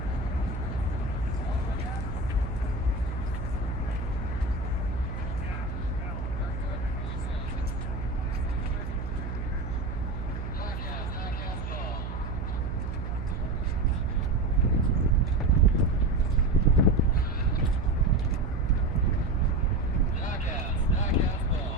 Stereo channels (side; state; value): right; noise; hum, 5 dB below the sound